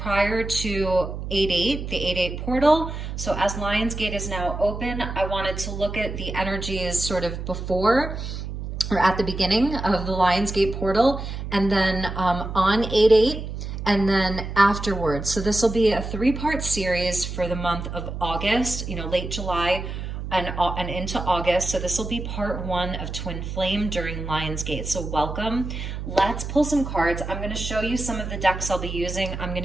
to 8/8, the 8/8 portal. So as Lionsgate is now open, I wanted to look at the energies sort of before or at the beginning of the Lionsgate portal, and then on 8/8, and then afterwards. So this will be a 3-part series for the month of August, late July and into August. So this will be part 1 of Twin Flame during Lionsgate. So welcome. Let's pull some cards. I'm going to show you some of the decks I'll be using. I'm going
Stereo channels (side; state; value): right; noise; hum, 6 dB below the sound